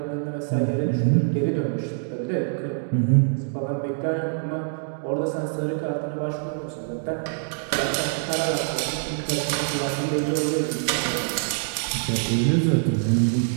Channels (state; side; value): silent; left; digital silence